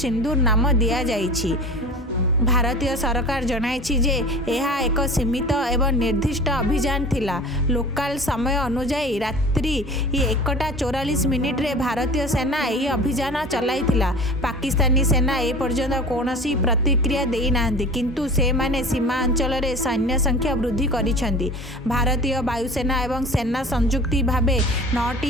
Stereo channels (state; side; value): normal; both; correlation 0.38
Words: नाम दिया जाइछि। भारतीय सरकार जनाइछि जे यह एक सीमित एवं निर्दिष्ट अभियान थिला। लोकल समय अनुसार रात्रि 1:44 रे भारतीय सेना यही अभियान चलाइथिला। पाकिस्तानी सेना ए पर्यंत कौनसी प्रतिक्रिया देई नाहंती, किंतु से माने सीमा अंचल रे सैन्य संख्या वृद्धि करिसेंती। भारतीय वायुसेना एवं सेना संयुक्ति भावे